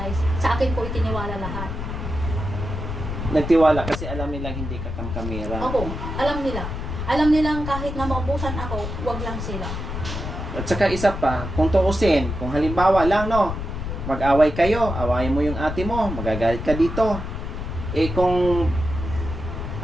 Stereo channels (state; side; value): noise; left; rumble, 5 dB below the sound